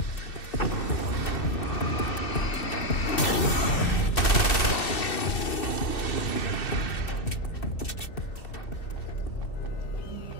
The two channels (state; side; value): late; right; 2.7 ms